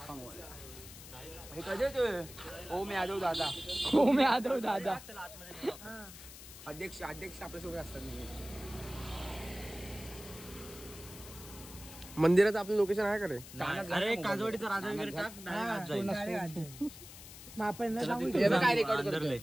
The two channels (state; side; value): noise; left; hiss, 15 dB below the sound